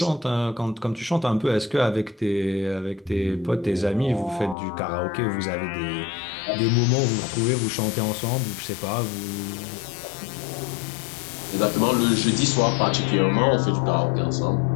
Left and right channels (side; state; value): right; drops out; at 4.5 s